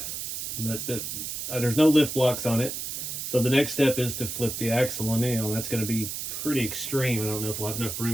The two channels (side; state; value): right; noise; hiss, 5 dB below the sound